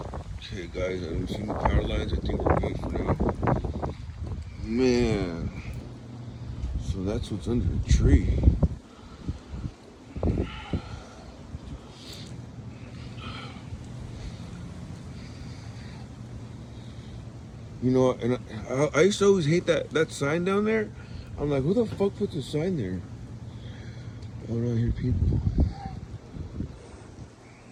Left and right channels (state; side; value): identical; both; correlation 1.00